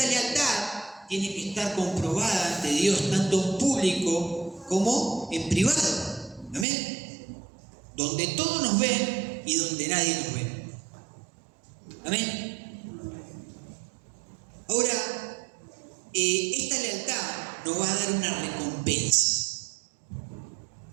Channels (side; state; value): left; drops out; at 6.7 s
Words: lealtad tiene que estar comprobada ante Dios, tanto en público como en privado. Amén. Donde todos nos ven y donde nadie nos ve. Amén. Ahora, esta lealtad nos va a dar una recompensa.